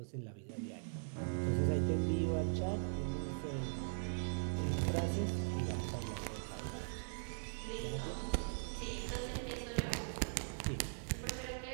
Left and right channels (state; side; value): silent; left; 51 dB below the other